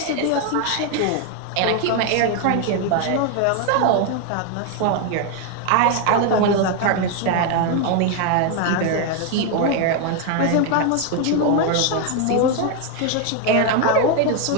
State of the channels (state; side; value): different; both; correlation 0.01